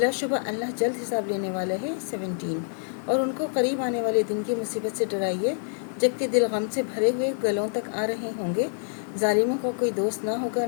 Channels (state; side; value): silent; right; digital silence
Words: अल्लाह जल्द हिसाब लेने वाला है। 17 और उनको करीब आने वाले दिन की मुसीबत से डराइए जबकि दिल गम से भरे हुए गलों तक आ रहे होंगे। जालिमों का कोई दोस्त ना होगा,